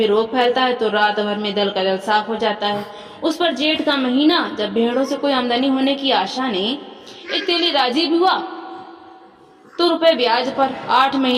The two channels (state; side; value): identical; both; correlation 1.00